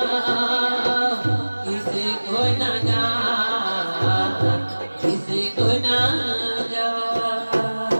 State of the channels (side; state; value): both; inverted; correlation -1.00